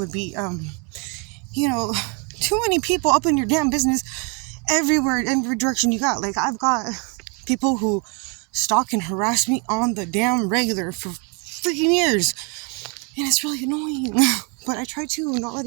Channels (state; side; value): quieter; left; 34.4 dB